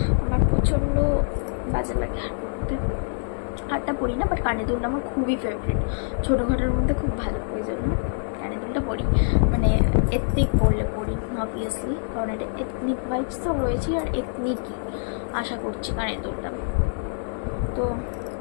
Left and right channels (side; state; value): right; silent; digital silence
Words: আমার প্রচণ্ড বাজে লাগে হার পরতে। হারটা পরি না, বাট কানের দুলটা আমার খুবই ফেভারিট, ছোটোখাটোর মধ্যে খুব ভালো, ওই জন্য কানের দুলটা পরি। মানে এথনিক পড়লে পড়ি অবভিয়াসলি, কারণ এটা এথনিক ভাইবস তো রয়েছে, আর এথনিকই আশা করছি কানের দুলটা। তো